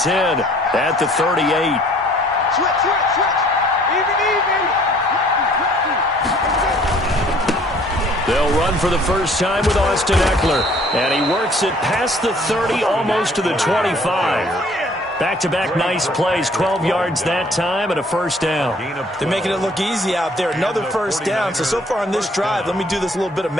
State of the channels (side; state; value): both; normal; correlation 0.57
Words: at the 38. Switch. Even. They'll run for the first time with Austin Eckler. And he works it past the 30, almost to the 25. Back-to-back nice plays, 12 yards that time and a first down. They're making it look easy out there. Another first down. So far on this drive, let me do this little bit of